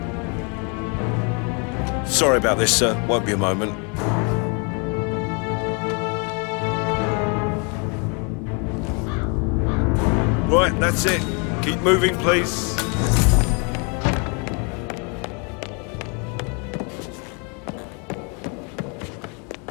Sorry about this, sir. Won't be a moment. Right, that's it. Keep moving, please.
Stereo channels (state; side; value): quieter; right; 34.9 dB